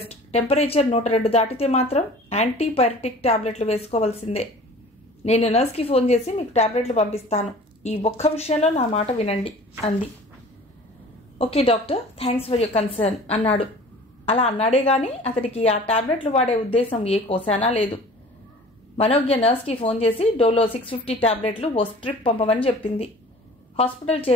టెంపరేచర్ 102 దాటితే మాత్రం యాంటీపైరటిక్ టాబ్లెట్లు వేసుకోవాల్సిందే. నేను నర్స్కి ఫోన్ చేసి మీకు టాబ్లెట్లు పంపిస్తాను. ఈ ఒక్క విషయంలో నా మాట వినండి అంది. Okay doctor, thanks for your concern అన్నాడు. అలా అన్నాడే గాని అతడికి ఆ టాబ్లెట్లు వాడే ఉద్దేశం ఏ కోసానా లేదు. మనోజ్ఞ నర్స్కి ఫోన్ చేసి డోలో 650 టాబ్లెట్లు ఓ స్ట్రిప్ పంపమని చెప్పింది. హాస్పిటల్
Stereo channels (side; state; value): both; normal; correlation 0.45